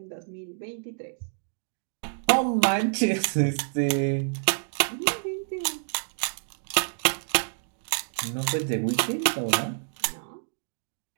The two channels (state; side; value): silent; left; digital silence